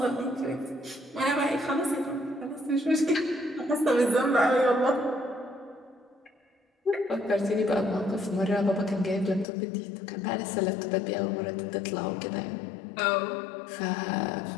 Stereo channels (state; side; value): drops out; right; at 9.5 s